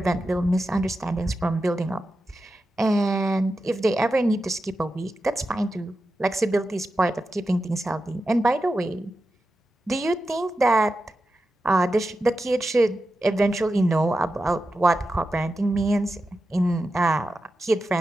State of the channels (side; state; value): both; normal; correlation 0.91